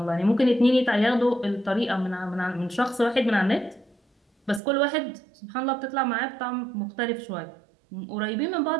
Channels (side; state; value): left; drops out; at 4.6 s